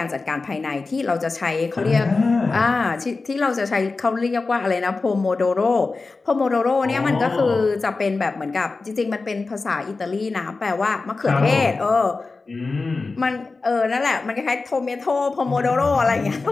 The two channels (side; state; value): right; quieter; 3.9 dB